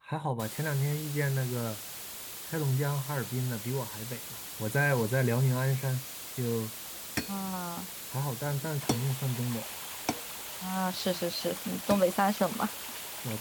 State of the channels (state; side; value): identical; both; correlation 1.00